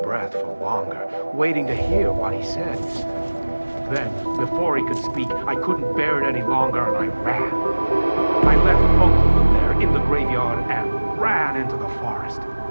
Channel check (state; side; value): inverted; both; correlation -1.00